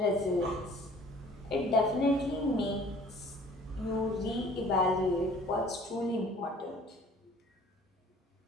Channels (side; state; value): both; normal; correlation 0.52